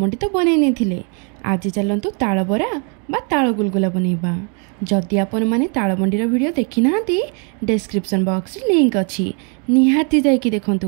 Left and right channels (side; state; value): left; quieter; 37.7 dB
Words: तो बनै नहीं आज चलतु ताल बरा बा ताल गुलगुला बनैबा। जदि आपण माने तालमंडीर वीडियो देखी ना डिस्क्रिप्शन बॉक्स रे लिंक अच्छी निहाती जाइकी